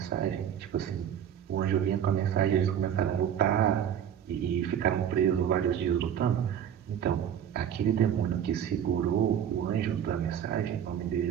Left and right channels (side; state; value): left; quieter; 9.3 dB